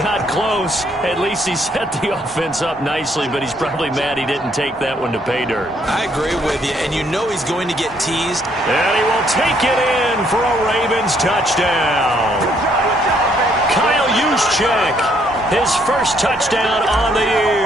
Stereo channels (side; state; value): both; normal; correlation 0.69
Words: close. At least he set the offense up nicely, but he's probably mad he didn't take that one to pay dirt. I agree with you, and you know he's going to get teased. And he will take it in for a Ravens touchdown. Kyle Juszczyk, his first touchdown on the